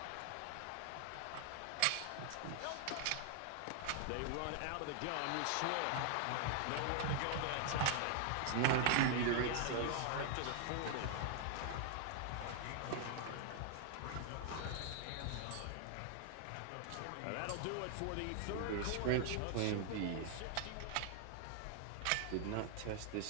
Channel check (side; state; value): both; different; correlation 0.00